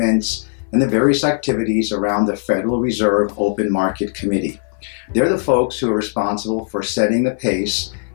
and the various activities around the Federal Reserve Open Market Committee. They're the folks who are responsible for setting the pace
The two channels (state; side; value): silent; right; 59 dB below the other